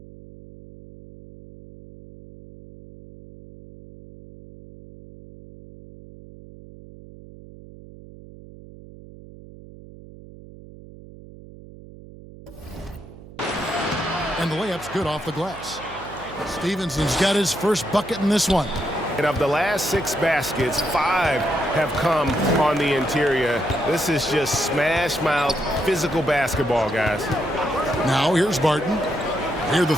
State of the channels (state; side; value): noise; right; hum, 18 dB below the sound